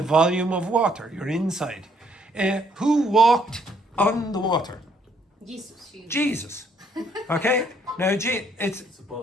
volume of water. You're inside. Who walked on the water? Jesus. Jesus. Okay? Now, it's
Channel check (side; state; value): both; normal; correlation 0.68